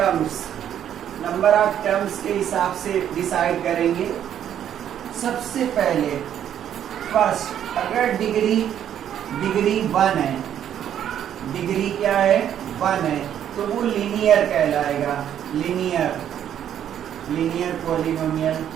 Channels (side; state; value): left; quieter; 10.0 dB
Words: number of terms के हिसाब से डिसाइड करेंगे। सबसे पहले फर्स्ट, अगर डिग्री 1 है, डिग्री क्या है 1 है, तो वो लीनियर कहलाएगा। Linear polynomial.